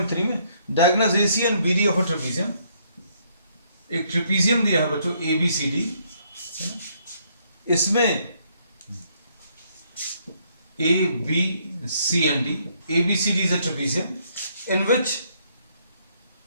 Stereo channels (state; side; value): inverted; both; correlation -0.69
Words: में diagonal AC and BD of a trapezium. एक trapezium दिया है बच्चों ABCD. इसमें ABC and D. ABCD is a trapezium in which